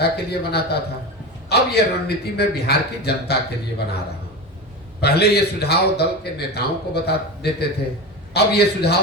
के लिए बनाता था, अब ये रणनीति मैं बिहार की जनता के लिए बना रहा हूँ। पहले ये सुझाव दल के नेताओं को बता देते थे, अब ये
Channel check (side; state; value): both; normal; correlation 0.24